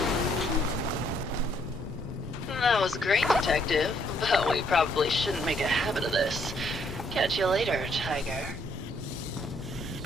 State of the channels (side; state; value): both; normal; correlation 0.69